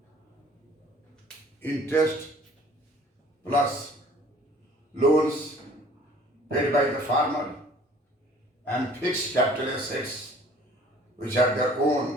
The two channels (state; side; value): normal; both; correlation 0.53